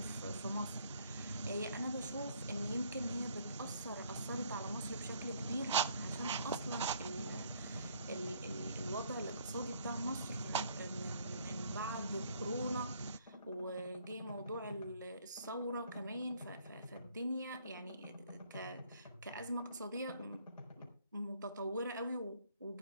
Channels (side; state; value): both; inverted; correlation -0.63